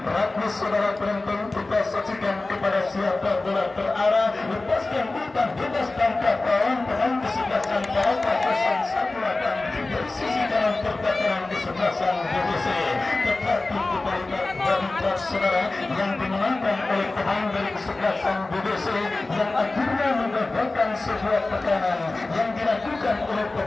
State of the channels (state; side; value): quieter; right; 3.2 dB